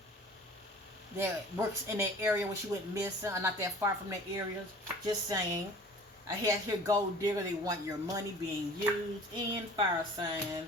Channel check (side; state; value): both; normal; correlation 0.45